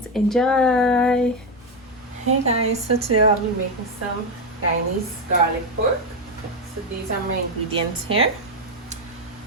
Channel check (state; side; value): normal; both; correlation 0.09